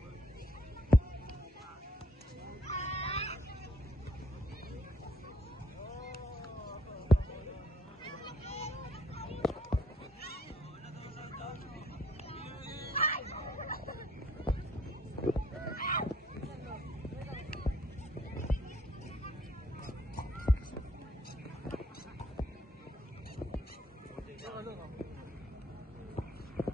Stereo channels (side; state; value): both; normal; correlation 0.65